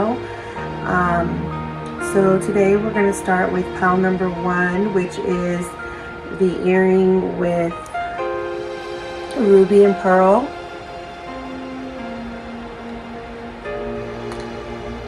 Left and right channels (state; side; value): identical; both; correlation 1.00